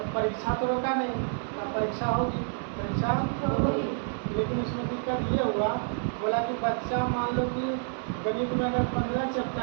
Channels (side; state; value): left; silent; 59 dB below the other